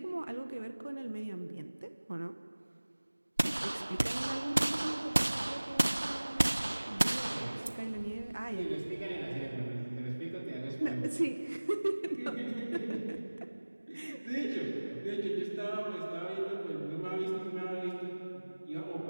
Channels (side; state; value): both; inverted; correlation -1.00